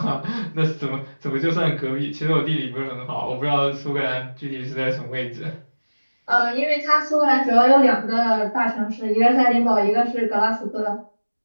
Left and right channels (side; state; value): both; inverted; correlation -1.00